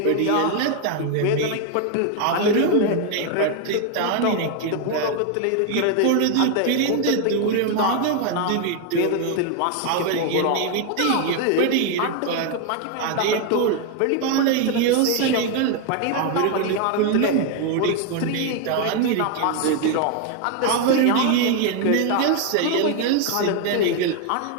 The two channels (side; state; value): both; different; correlation 0.01